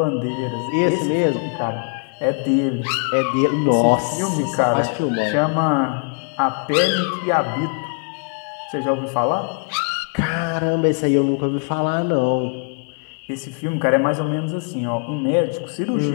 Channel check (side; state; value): right; quieter; 39.8 dB